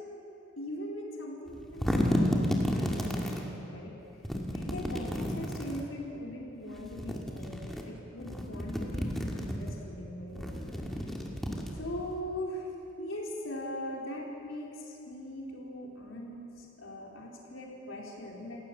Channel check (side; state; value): both; normal; correlation 0.75